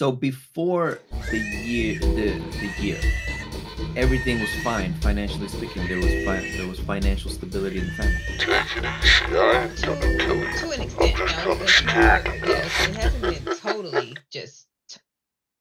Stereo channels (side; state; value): both; identical; correlation 1.00